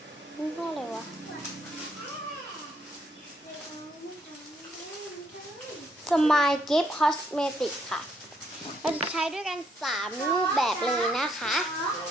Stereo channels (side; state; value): both; normal; correlation 0.72